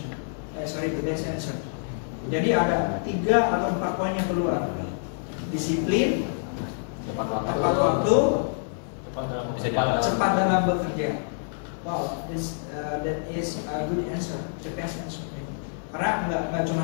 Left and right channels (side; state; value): right; silent; 60 dB below the other